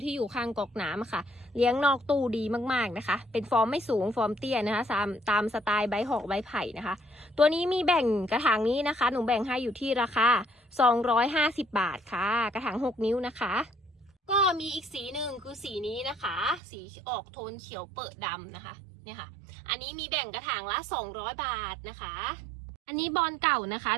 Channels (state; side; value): drops out; left; at 16.6 s